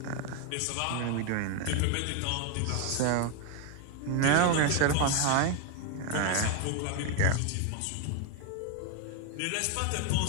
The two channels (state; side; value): different; both; correlation 0.01